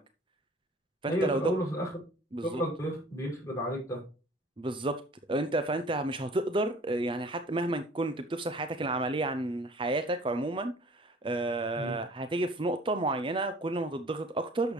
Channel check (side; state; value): both; normal; correlation 0.50